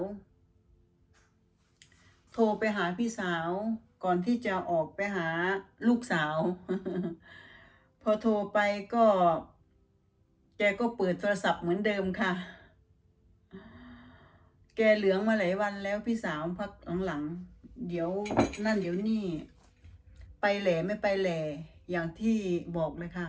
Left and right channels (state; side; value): identical; both; correlation 1.00